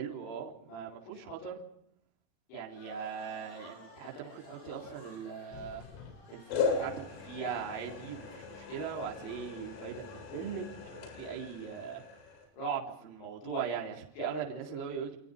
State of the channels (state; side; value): late; right; 35 ms